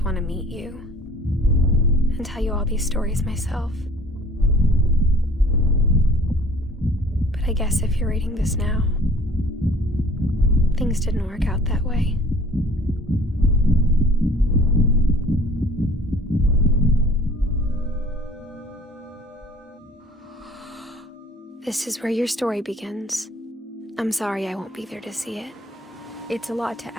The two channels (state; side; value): normal; both; correlation 0.51